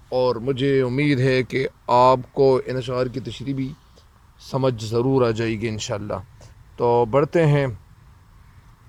اور مجھے امید ہے کہ آپ کو ان اشعار کی تشریح بھی سمجھ ضرور آ جائے گی انشاءاللہ۔ تو بڑھتے ہیں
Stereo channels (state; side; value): identical; both; correlation 1.00